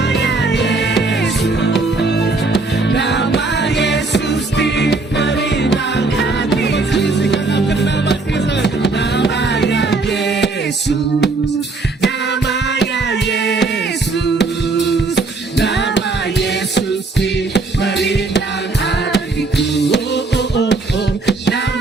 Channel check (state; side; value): quieter; left; 3.5 dB